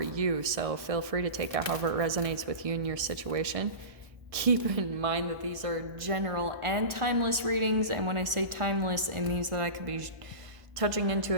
you, so feel free to take it however it resonates with you and your situation. Keep in mind that these are general and timeless readings, and when I say timeless, it means that I could be touching into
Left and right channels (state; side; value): late; left; 1.4 ms